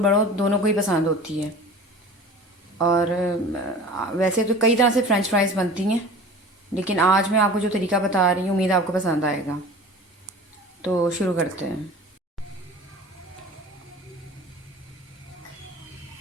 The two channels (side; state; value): both; normal; correlation 0.40